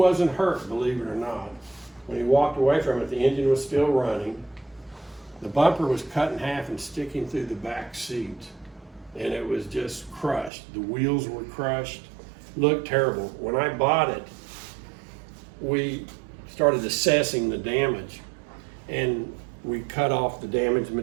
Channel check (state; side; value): drops out; left; at 10.5 s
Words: hurt, believe it or not. When he walked away from it, the engine was still running. The bumper was cut in half and sticking through the back seat, and it was just crushed. The wheels were crushed, looked terrible. When I bought it, we started assessing the damage, and we cut off the damaged